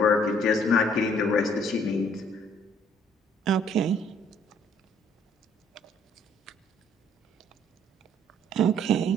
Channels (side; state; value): both; normal; correlation 0.61